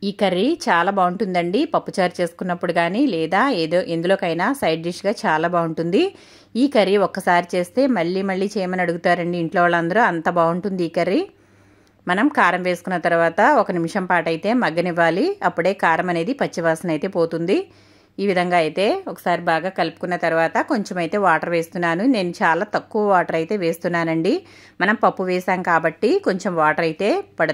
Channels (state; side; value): identical; both; correlation 1.00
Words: ఈ కర్రీ చాలా బాగుంటుందండి. పప్పుచారు చేసుకున్నప్పుడు కానీ లేదా ఎందులోకైనా సైడ్ డిష్గా చాలా బాగుంటుంది. ఈ కర్రీ ఒక్కసారి చేస్తే మళ్ళీ చేయమని అడుగుతారండి ఇంట్లో వాళ్ళందరూ. అంత బాగుంటుంది ఈ కర్రీ. మనం కారం వేసుకున్న తర్వాత 1 నిమిషం పాటు అయితే మగ్గనివ్వాలి. అప్పుడే కారం అనేది పచ్చివాసన అయితే పోతుంది. ఈ విధంగా అయితే ఒకసారి బాగా కలుపుకున్న తర్వాత కొంచెం అయితే వాటర్ వేస్తున్నాను. నేను చాలా తక్కువ వాటర్ అయితే వేస్తున్నానండి. మనం పప్పు వేసాం కాబట్టి కొంచెం వాటర్ అయితే